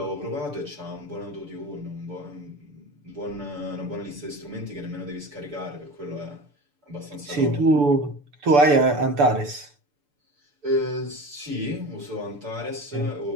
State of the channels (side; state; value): left; late; 6.9 ms